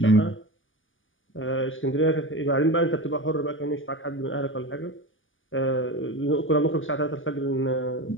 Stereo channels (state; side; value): late; right; 0.58 ms